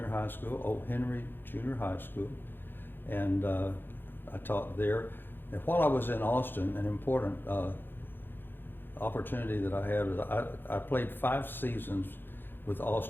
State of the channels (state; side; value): late; right; 0.099 ms